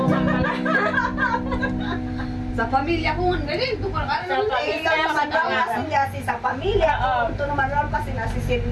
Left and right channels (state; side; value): identical; both; correlation 1.00